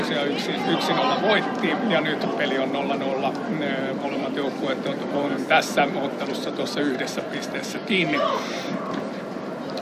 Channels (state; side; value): identical; both; correlation 1.00